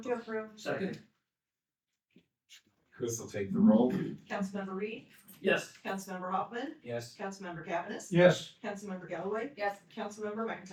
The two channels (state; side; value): identical; both; correlation 1.00